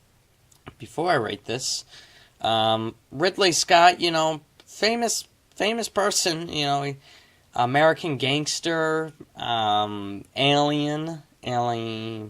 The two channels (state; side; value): identical; both; correlation 1.00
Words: Before I rate this, Ridley Scott, famous person, American Gangster, Alien,